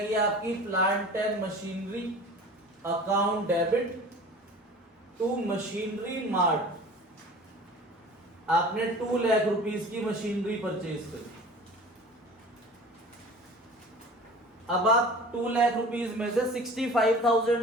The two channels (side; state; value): both; normal; correlation 0.41